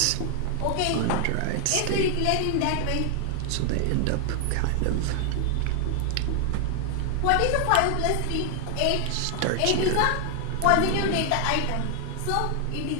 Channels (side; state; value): both; different; correlation 0.00